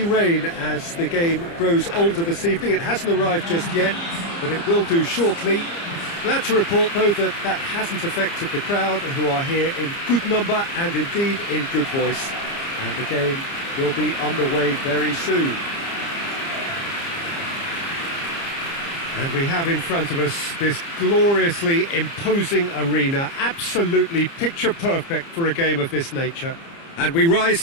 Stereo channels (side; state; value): right; late; 30 ms